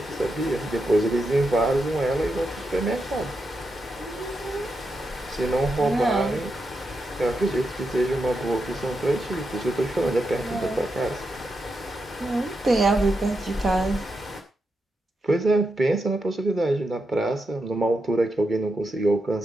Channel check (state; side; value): normal; both; correlation 0.86